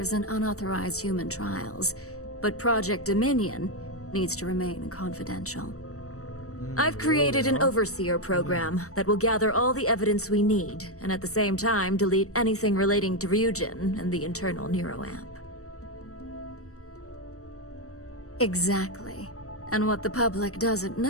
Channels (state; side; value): late; right; 0.65 ms